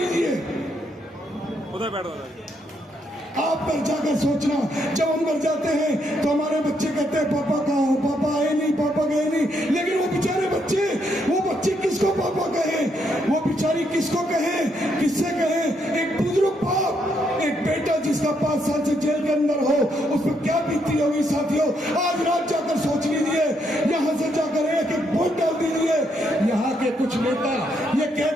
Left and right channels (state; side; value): normal; both; correlation 0.76